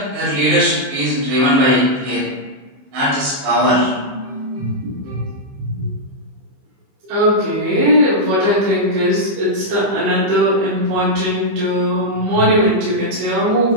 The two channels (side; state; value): left; late; 15 ms